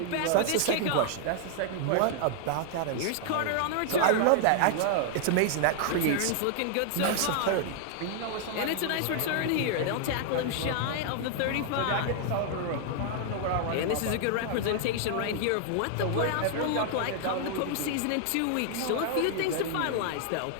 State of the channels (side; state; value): both; different; correlation 0.00